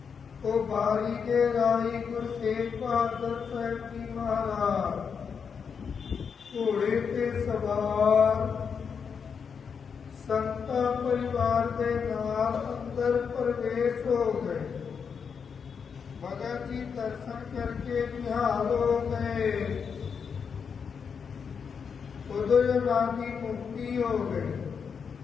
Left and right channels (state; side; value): quieter; right; 6.4 dB